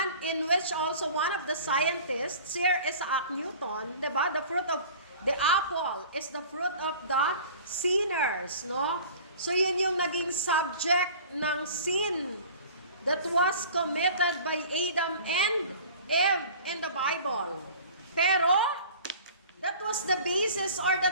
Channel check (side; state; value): both; inverted; correlation -0.44